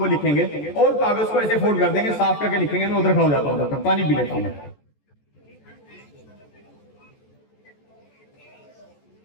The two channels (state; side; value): late; right; 14 ms